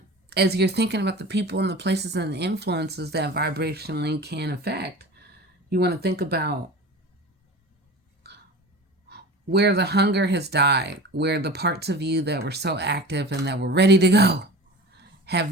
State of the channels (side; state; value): both; normal; correlation 0.36